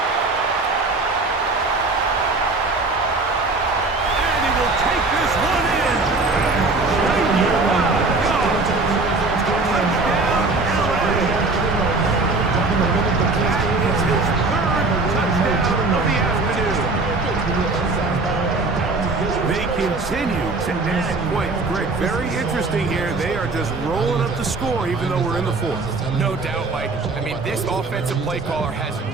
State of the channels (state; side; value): quieter; left; 3.5 dB